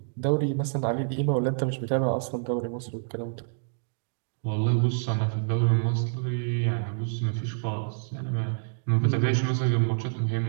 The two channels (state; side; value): silent; left; digital silence